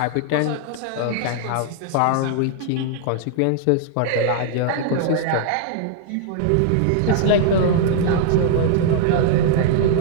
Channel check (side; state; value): both; different; correlation 0.00